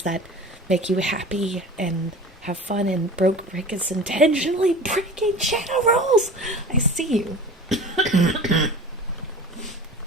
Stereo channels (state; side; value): normal; both; correlation 0.37